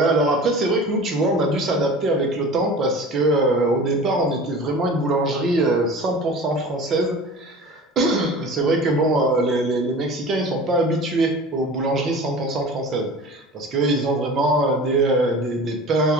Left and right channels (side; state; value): both; normal; correlation 0.38